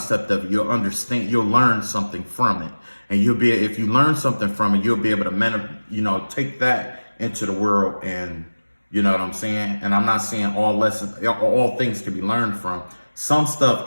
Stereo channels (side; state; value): both; inverted; correlation -1.00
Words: of it. You'll learn something from it. And if you learn something from it, you'll be able to, take that into the world. And you know what I'm saying? And I'm not saying all things can be learned from. Some